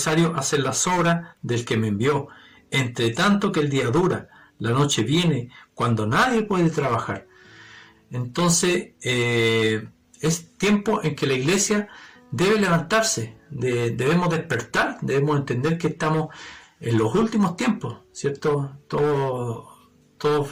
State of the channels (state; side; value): identical; both; correlation 1.00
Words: hacer las obras del que me envió, entre tanto que el día dura, la noche viene, cuando nadie puede trabajar. Entonces, es tiempo en que la iglesia debe levantarse, debemos despertar, debemos entender que estamos en los últimos tiempos, ¿cierto? Todos